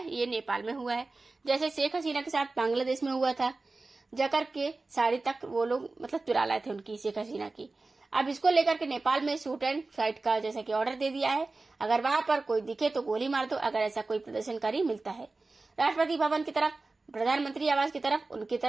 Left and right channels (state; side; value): quieter; left; 3.5 dB